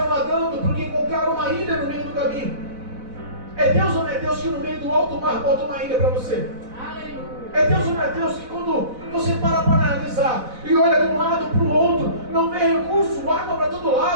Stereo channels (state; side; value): late; left; 4.0 ms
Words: nadando porque encontraram uma ilha no meio do caminho. É Deus ou não é Deus que no meio do alto mar bota uma ilha para você? Aleluia. É Deus ou não é Deus que quando você para analisar e olha de um lado para o outro, não vê recurso, água para todo